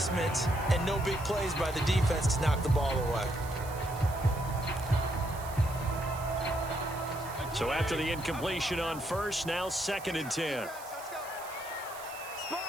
and no big plays by the defense to knock the ball away. So after the incompletion on first, now 2nd and 10.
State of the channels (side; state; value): right; noise; hiss, 16 dB below the sound